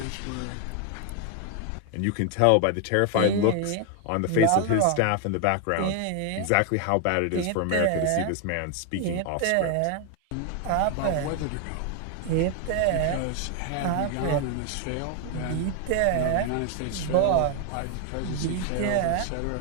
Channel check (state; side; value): different; both; correlation 0.01